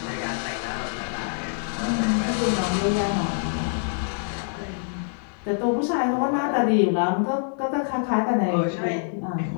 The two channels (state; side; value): silent; right; digital silence